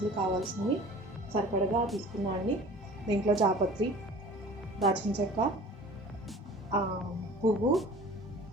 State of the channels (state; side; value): normal; both; correlation 0.44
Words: కావాల్సినవి సరిపడగా తీసుకున్నాను. దీంట్లో జాపత్రి, దాల్చిన చెక్క, పువ్వు,